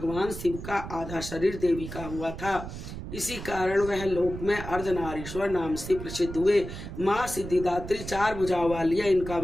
शिव का आधा शरीर देवी का हुआ था। इसी कारण वह लोक में अर्धनारीश्वर नाम से प्रसिद्ध हुए। माँ सिद्धिदात्री 4 भुजाओं वाली है। इनका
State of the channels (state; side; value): noise; right; rumble, 9 dB below the sound